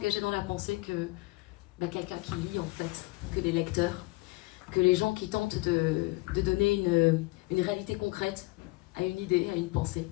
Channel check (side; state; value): right; quieter; 23.3 dB